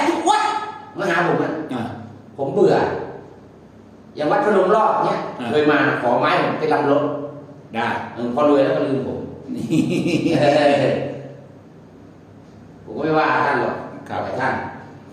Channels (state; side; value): identical; both; correlation 1.00